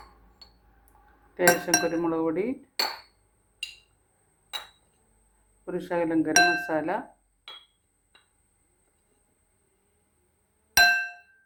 ലേശം കുരുമുളക് പൊടി, ഒരു ശകലം ഗരം മസാല,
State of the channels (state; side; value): identical; both; correlation 1.00